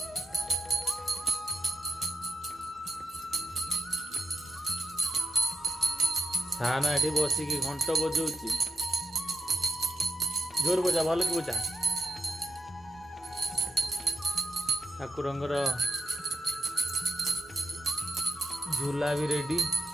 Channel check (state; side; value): normal; both; correlation 0.84